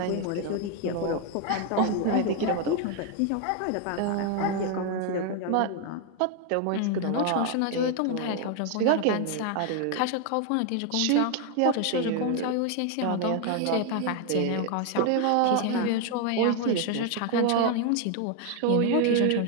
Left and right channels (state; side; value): different; both; correlation 0.01